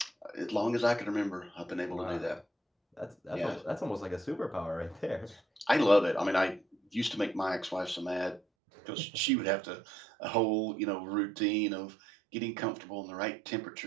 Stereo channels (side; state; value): left; drops out; at 8.4 s